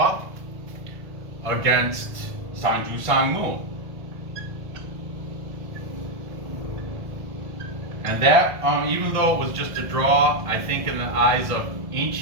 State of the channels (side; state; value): left; late; 1.5 ms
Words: against Seongnam. And that, even though it was just a draw, I think in the eyes of